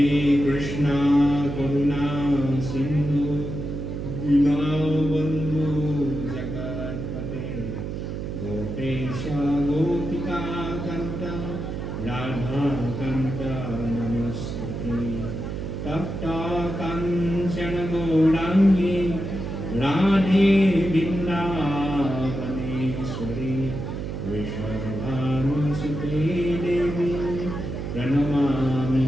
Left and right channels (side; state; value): right; noise; hum, 5 dB below the sound